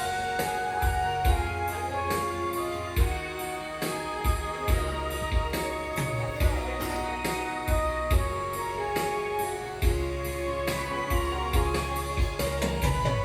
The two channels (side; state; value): both; identical; correlation 1.00